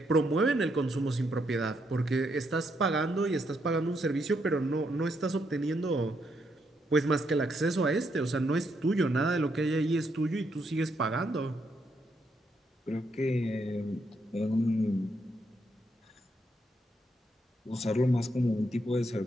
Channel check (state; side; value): normal; both; correlation 0.77